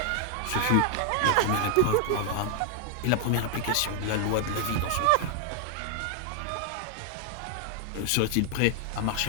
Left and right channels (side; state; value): both; different; correlation 0.00